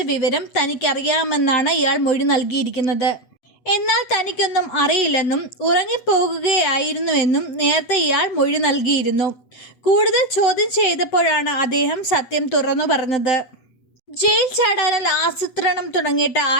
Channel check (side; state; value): right; late; 8.1 ms